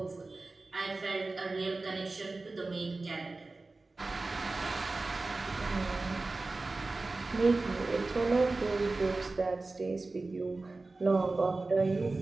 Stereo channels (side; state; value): left; quieter; 3.4 dB